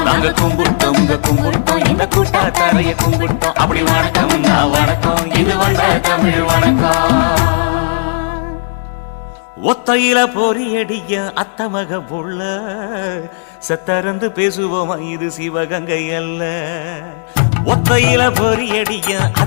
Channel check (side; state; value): right; silent; digital silence